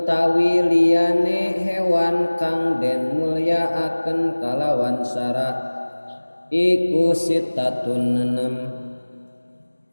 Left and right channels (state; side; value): inverted; both; correlation -1.00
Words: liyane hewan kang den mulyaakeun kalawan syara iku sitatun